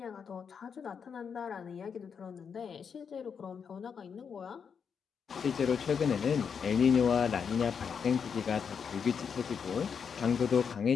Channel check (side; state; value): right; quieter; 6.6 dB